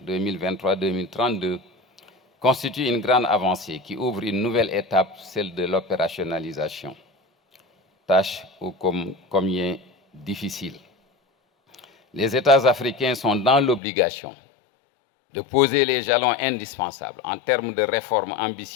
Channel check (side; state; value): right; drops out; at 13.8 s